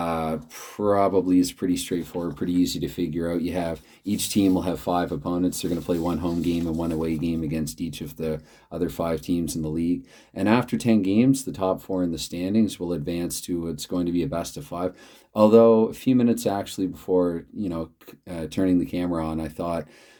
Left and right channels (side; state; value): both; identical; correlation 1.00